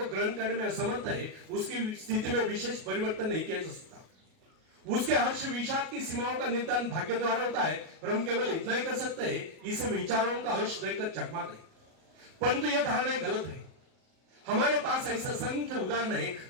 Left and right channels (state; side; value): late; left; 38 ms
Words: ग्रहण करने में असमर्थ है. उसकी स्थिति में विशेष परिवर्तन नहीं किया जा सकता. उसके हर्ष विषाद की सीमाओं का निर्धारण भाग्य द्वारा होता है और हम केवल इतना ही कर सकते हैं, इसे विचारों का हर्ष देखकर चकमा दें. परंतु यह धारणा गलत है. हमारे पास ऐसा असंख्य उदाहरण